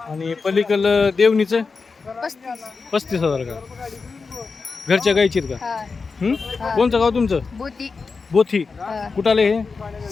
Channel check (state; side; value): quieter; right; 4.6 dB